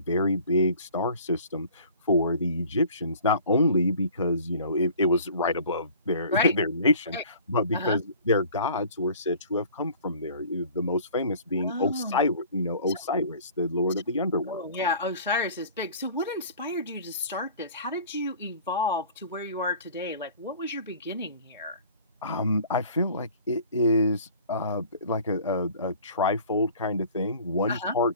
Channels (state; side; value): inverted; both; correlation -0.47